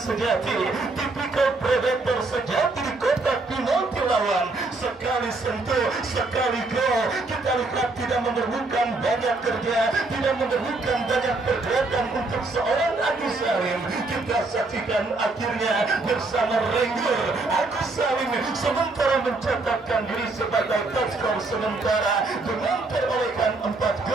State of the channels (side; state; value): left; quieter; 3.4 dB